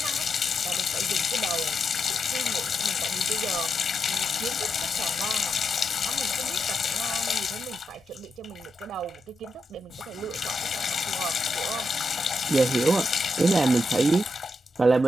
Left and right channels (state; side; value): normal; both; correlation 0.84